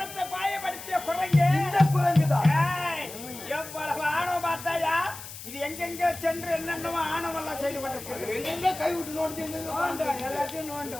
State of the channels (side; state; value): left; noise; hiss, 13 dB below the sound